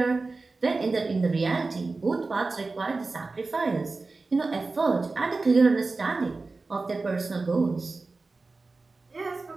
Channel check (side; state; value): left; quieter; 3.7 dB